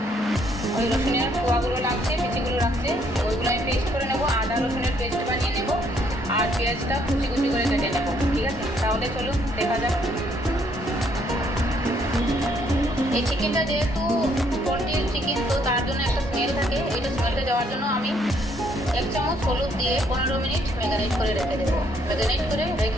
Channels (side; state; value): both; normal; correlation 0.68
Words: ওই রসুনের কোয়াগুলো লাগছে, বিচিগুলো লাগছে, ওইগুলো আমি পেস্ট করে নেবো। আদা রসুনের পেস্ট বানিয়ে নেব আর পেঁয়াজটা কুচি কুচি করে কেটে নেব। ঠিক আছে, তাহলে চলুন দেখা যাক। এই চিকেনটা যেহেতু পোলট্রির চিকেন, তো তার জন্য একটা স্মেল থাকে। এইটা স্মেলটা যাওয়ার জন্য আমি 1 চামচ হলুদ দিয়ে 15 মিনিট ম্যারিনেট করে রেখে দেবো। ম্যারিনেট করে